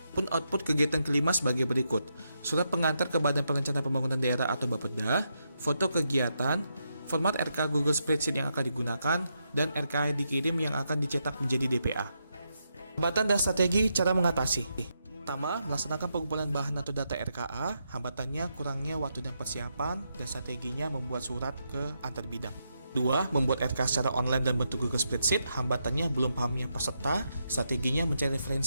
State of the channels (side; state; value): both; inverted; correlation -0.82